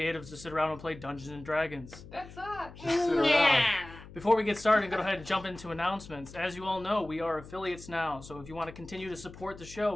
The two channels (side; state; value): left; noise; hum, 17 dB below the sound